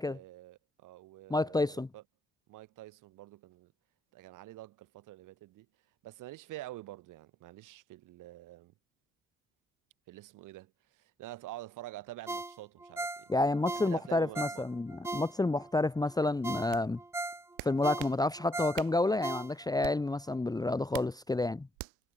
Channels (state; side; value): normal; both; correlation 0.75